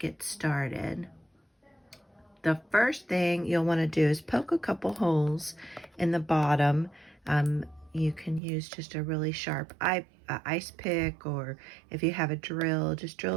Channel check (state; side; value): drops out; left; at 8.4 s